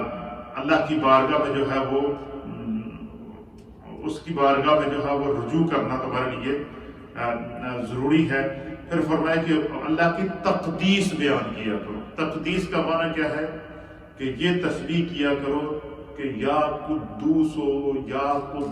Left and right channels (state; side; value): identical; both; correlation 1.00